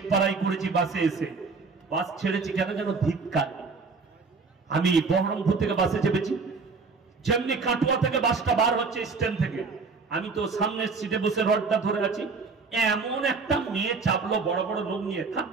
করেছি, বাসে এসে বাস ছেড়েছি কেন যেন ধিক্কার। আমি বহরমপুর থেকে বাসে চেপেছি, যেমনি কাটুয়া থেকে বাসটা বার হচ্ছে স্ট্যান্ড থেকে, আমি তো সামনের সিটে বসে রডটা ধরে আছি, এমন একটা মেয়ে চাপলো বড় বড় লোক নিয়ে, খাপ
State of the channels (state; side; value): quieter; left; 4.5 dB